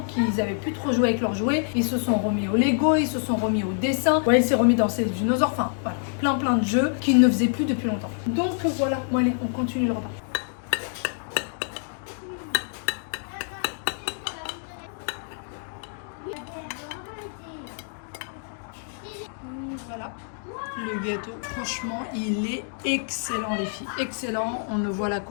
qu'ils n'avaient plus trop joué avec leurs jouets. Ils se sont remis au Lego, ils se sont remis au dessin. Ouais, il s'est remis dans ses dinosaures. Enfin, voilà, plein de jeux qu'ils ne faisaient plus depuis longtemps. Donc voilà, bon allez, on continue le repas. Voilà. Le gâteau, franchement, il est excellent les filles, excellent, on ne voit la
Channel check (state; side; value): silent; right; 58 dB below the other